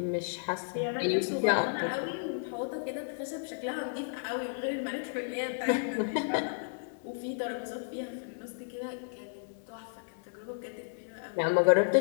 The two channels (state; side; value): silent; right; 56 dB below the other